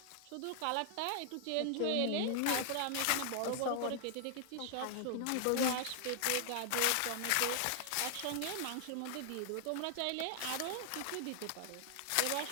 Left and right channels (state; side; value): different; both; correlation 0.00